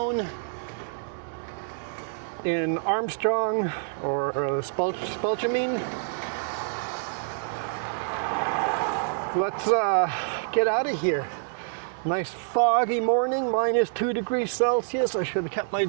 in Armstrong or Spelchamine. Let's get out of here. Nice foggy morning, minus 2 degrees Celsius. I should have kept my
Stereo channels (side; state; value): left; silent; digital silence